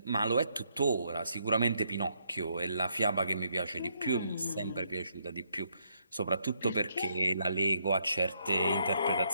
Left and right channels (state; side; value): inverted; both; correlation -0.75